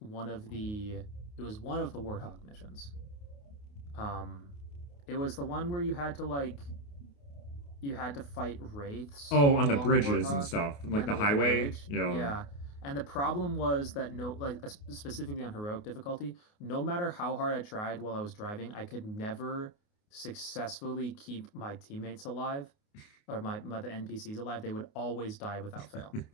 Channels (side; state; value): right; late; 28 ms